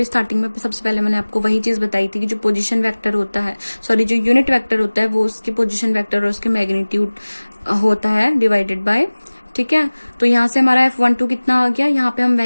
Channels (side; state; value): both; inverted; correlation -1.00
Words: स्टार्टिंग में सबसे पहले मैंने आपको वही चीज बताई थी कि जो पोजीशन वेक्टर होता है, सॉरी जो यूनिट वेक्टर होता है वो उसके पोजीशन वेक्टर और उसके मैग्नीट्यूड होता है डिवाइडेड बाय, ठीक है। तो यहाँ से हमारा F12 कितना आ गया, यहाँ पे हम